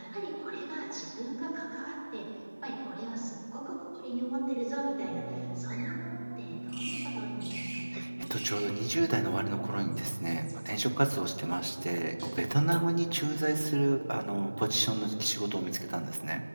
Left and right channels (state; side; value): inverted; both; correlation -1.00